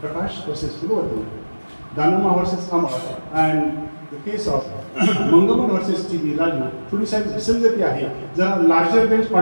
versus Kulwarti, Danamma versus Amar and the case of Mangamman versus टी.बी. राजू थोडी साहेब विसंगती आहे, जरा लार्जर बेंच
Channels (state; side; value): inverted; both; correlation -1.00